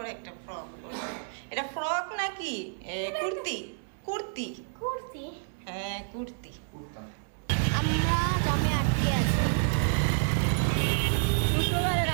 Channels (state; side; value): silent; left; 58 dB below the other